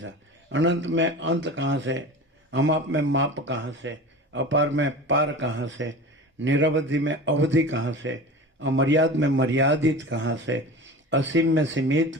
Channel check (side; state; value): both; normal; correlation 0.34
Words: अनंत में अंत कहाँ से? अमाप में माप कहाँ से? अपार में पार कहाँ से? निरवधि में अवधि कहाँ से? अमर्याद में मर्यादित कहाँ से? असीम में सीमित